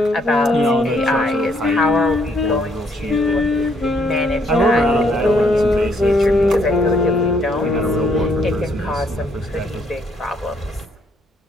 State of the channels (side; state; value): both; normal; correlation 0.70